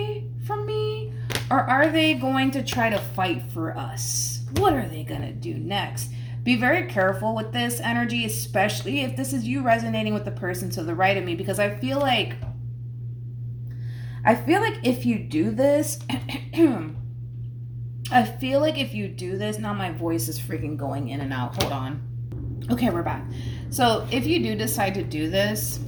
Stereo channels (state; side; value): identical; both; correlation 1.00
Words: from me? Or are they going to try to fight for us? What are they going to do next? Be very careful with this energy, especially if this is you resonating with the person to the right of me, because I feel like if you do this, now my voice is freaking going in and out. Hold on. Okay, we're back. So if you do decide to do this,